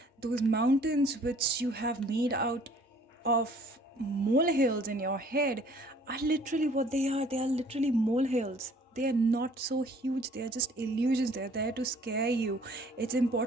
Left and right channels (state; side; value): normal; both; correlation 0.56